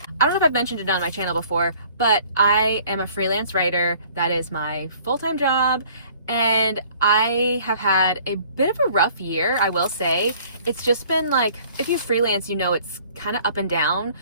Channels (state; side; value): inverted; both; correlation -0.55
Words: I don't know if I've mentioned it on my channel before, but I am a freelance writer. That is my full-time job. And I have had a bit of a rough year, I will say. It's just been like, if you freelance, you know it's kind of up and down